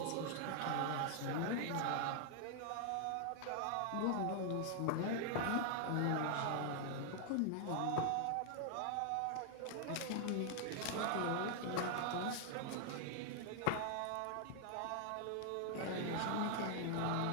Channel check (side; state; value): both; different; correlation 0.00